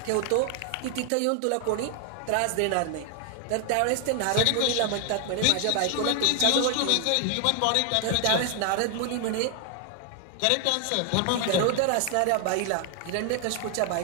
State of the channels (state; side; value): different; both; correlation 0.00